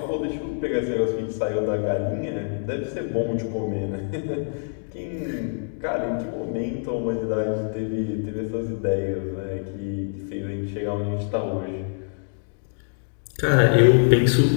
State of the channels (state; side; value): silent; right; digital silence